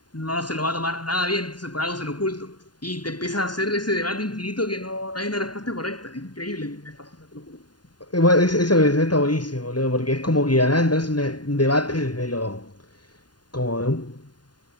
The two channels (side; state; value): right; late; 0.70 ms